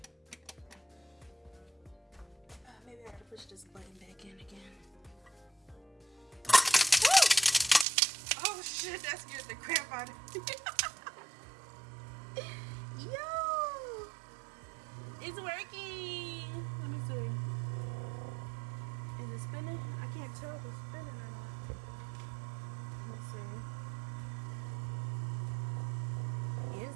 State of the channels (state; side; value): drops out; left; at 7.9 s